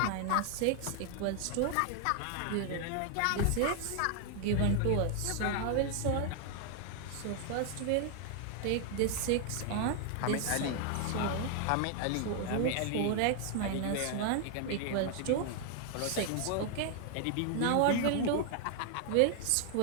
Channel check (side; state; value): both; different; correlation 0.00